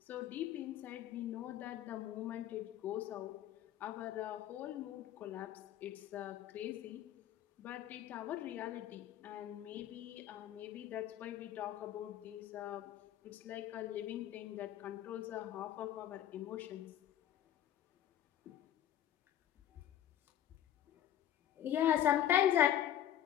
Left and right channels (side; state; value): right; quieter; 11.4 dB